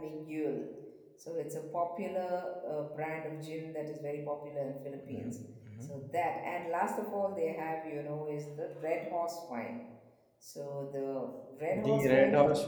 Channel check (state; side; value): identical; both; correlation 1.00